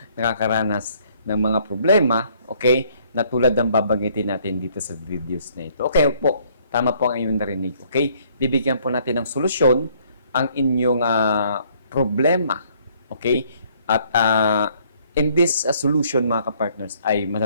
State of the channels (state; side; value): inverted; both; correlation -0.64